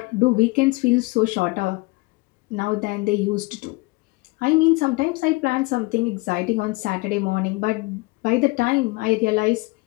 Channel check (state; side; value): quieter; right; 24.2 dB